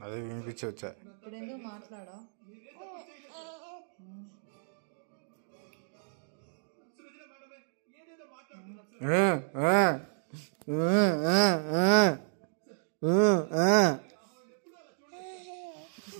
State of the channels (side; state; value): left; silent; digital silence